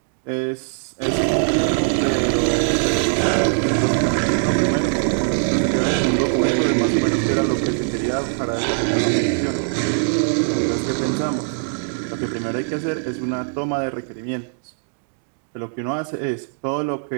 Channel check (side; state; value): left; silent; digital silence